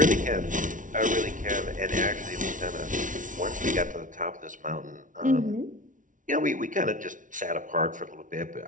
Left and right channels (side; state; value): left; late; 0.38 ms